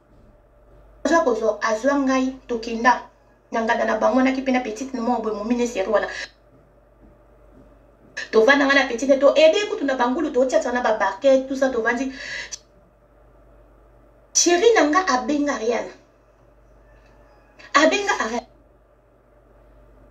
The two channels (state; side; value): identical; both; correlation 1.00